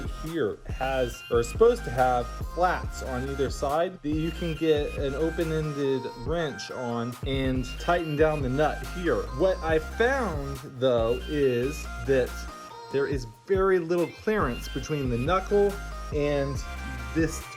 here has, or is supposed to have, flats on either side that you can get an open-ended wrench on and tighten down the nut here. What I found though is that there is very little clearance between the knuckle and this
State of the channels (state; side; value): identical; both; correlation 1.00